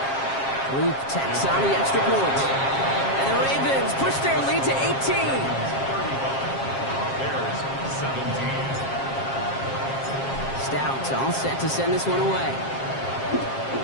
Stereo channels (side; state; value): right; late; 7.4 ms